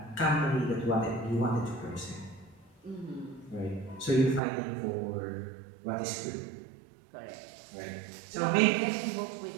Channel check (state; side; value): drops out; left; at 4.4 s